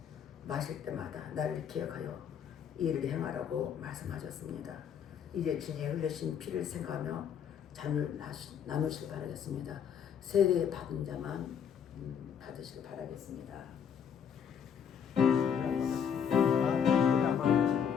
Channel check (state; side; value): quieter; right; 7.8 dB